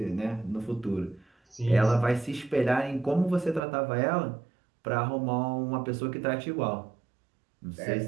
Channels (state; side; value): drops out; left; at 3.6 s